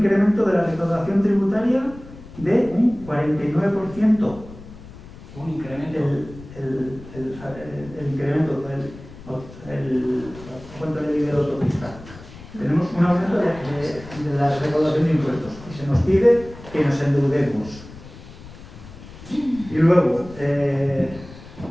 de la recaudación tributaria de un 49%. Un incremento. El incremento cuánto le dice el autopista. Tenemos un aumento de la recaudación de impuestos y se nos pide que nos endeudemos. Y luego,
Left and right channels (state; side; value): noise; left; rumble, 17 dB below the sound